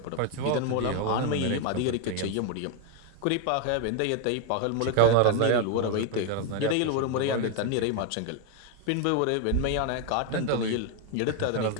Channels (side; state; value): both; different; correlation 0.01